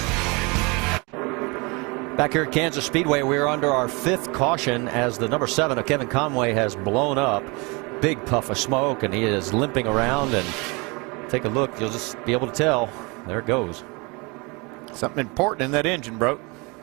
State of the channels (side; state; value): left; quieter; 28.1 dB